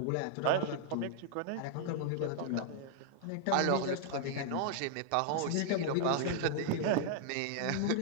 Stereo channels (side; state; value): both; different; correlation 0.00